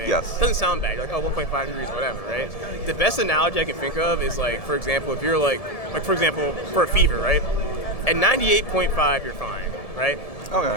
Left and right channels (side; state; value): right; late; 1.7 ms